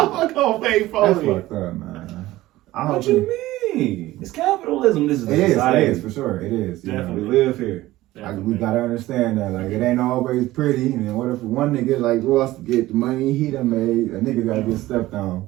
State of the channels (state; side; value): quieter; left; 16.8 dB